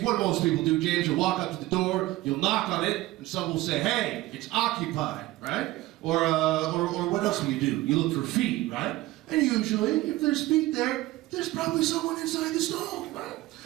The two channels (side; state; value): left; quieter; 17.9 dB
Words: what do most people do, James? You'll walk up to the door, you'll knock on it, and someone will say, hey, it's occupied, right? Or what else do? You look for feet, right? And usually, if there's feet there, there's probably someone inside the stall, right?